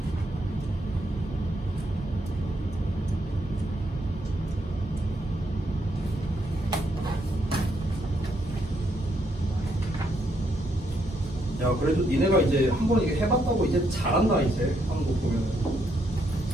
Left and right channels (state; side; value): normal; both; correlation 0.75